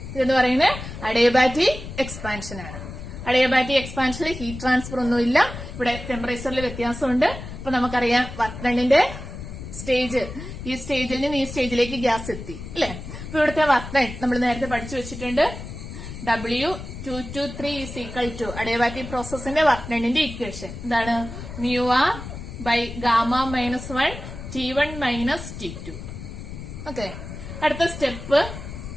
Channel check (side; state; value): left; noise; rumble, 10 dB below the sound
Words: ഇതെന്ന് പറയുന്നത് അഡിയബാറ്റിക് എക്സ്പാൻഷൻ ആണ്. അഡിയബാറ്റിക് എക്സ്പാൻഷനിൽ ഹീറ്റ് ട്രാൻസ്ഫർ ഒന്നുമില്ല. ഇവിടെ ടെമ്പറേച്ചറിൽ വ്യത്യാസമുണ്ട്. അപ്പൊ നമുക്കറിയാം വർക്ക് ഡണ്ണിന്റെ സ്റ്റേജ്, ഈ സ്റ്റേജിൽ നിന്ന് ഈ സ്റ്റേജിലേക്ക് ഗ്യാസ് എത്തി അല്ലെ. അപ്പൊ ഇവിടുത്തെ വർക്ക് ഡൺ നമ്മൾ നേരത്തെ പഠിച്ചു വെച്ചിട്ടുണ്ട്. W2 to 3 is equal to adiabatic പ്രോസസിന്റെ വർക്ക് ഡണ്ണിന്റെ ഇക്വേഷൻ എന്താണ്? μR/γ-1 T1 - T2. ഓക്കെ. അടുത്ത സ്റ്റെപ്പ്